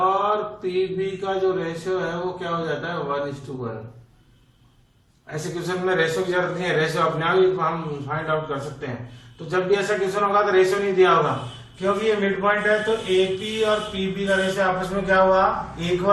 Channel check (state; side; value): identical; both; correlation 1.00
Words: PB का जो रेशियो है वो क्या हो जाता है 1:1। ऐसे क्वेश्चन में रेशियो की जरूरत नहीं है, रेशियो अपने आप ही हम फाइंड आउट कर सकते हैं। तो जब भी ऐसा क्वेश्चन होगा तो रेशियो नहीं दिया होगा, क्योंकि ये मिड पॉइंट है। तो AP और PB का रेशियो आपस में क्या हुआ,